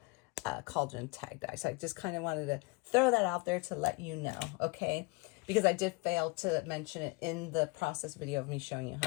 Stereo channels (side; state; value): right; quieter; 25.8 dB